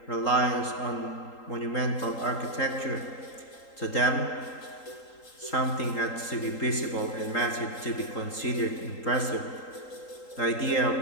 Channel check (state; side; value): late; right; 3.8 ms